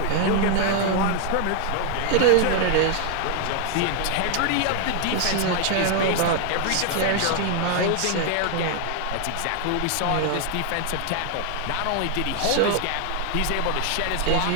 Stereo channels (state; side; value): different; both; correlation 0.00